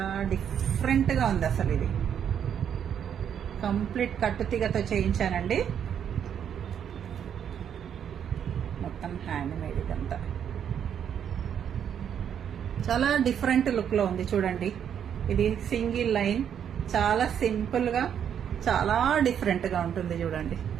డిఫరెంట్ గా ఉంది అసలు. ఇది కంప్లీట్ కట్టుతీగతో చేయించానండి. మొత్తం హ్యాండ్ మేడ్. ఇదంతా చాలా డిఫరెంట్ లుక్ లో ఉంది. చూడండి, ఇది సింగిల్ లైన్, చాలా సింపుల్ గా చాలా డిఫరెంట్ గా ఉంటుంది. చూడండి,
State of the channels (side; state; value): left; quieter; 8.7 dB